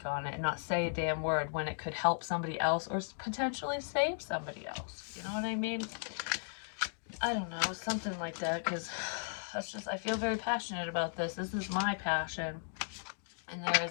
on it and not say a damn word when it could help somebody else or potentially save somebody else. You know what I mean? I don't know, something like that, because that's just, I feel very passionate about this. This is my passion. And there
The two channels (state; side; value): silent; right; digital silence